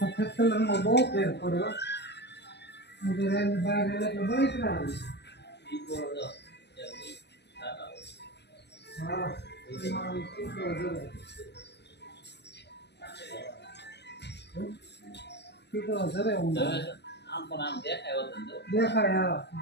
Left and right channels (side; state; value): right; late; 0.50 ms